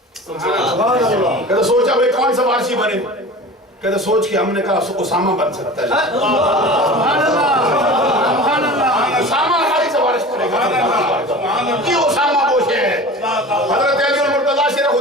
کہتے سوچا بھئی کون سفارشی بنے، کہتے سوچ کے ہم نے کہا اسامہ بن سکتا ہے. اسامہ ہماری سفارش کرے گا. یہ اسامہ وہ ہے. حضرت علی اور مرتضیٰ شیر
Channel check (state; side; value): normal; both; correlation 0.36